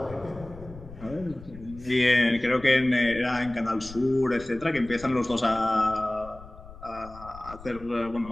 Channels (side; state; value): left; noise; rumble, 17 dB below the sound